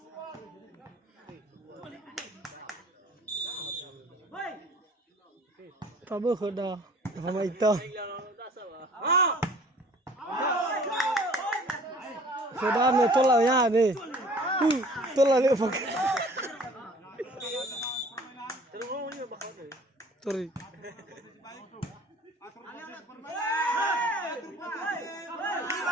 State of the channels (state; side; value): normal; both; correlation 0.50